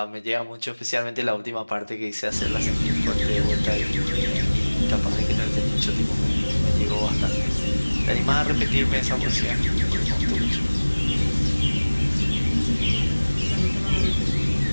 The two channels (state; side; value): inverted; both; correlation -1.00